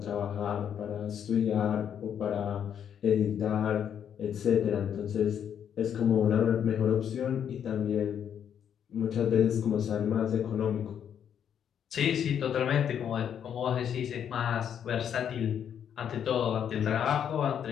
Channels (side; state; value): right; quieter; 8.7 dB